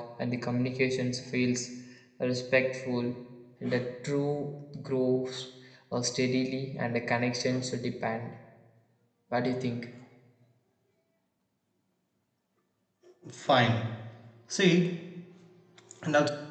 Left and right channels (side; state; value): both; identical; correlation 1.00